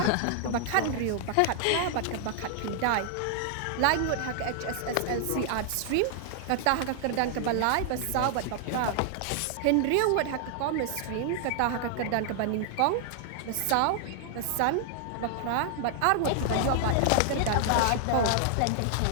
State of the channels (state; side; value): different; both; correlation 0.00